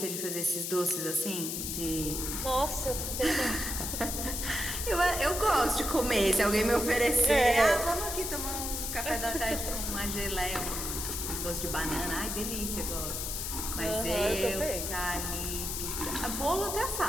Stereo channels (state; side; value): noise; left; hiss, 3 dB below the sound